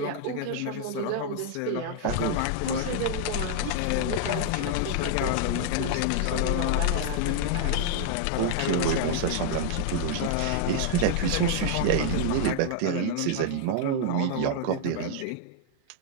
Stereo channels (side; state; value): both; different; correlation -0.01